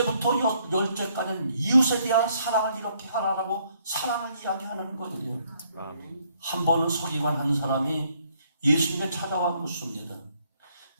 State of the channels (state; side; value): inverted; both; correlation -0.69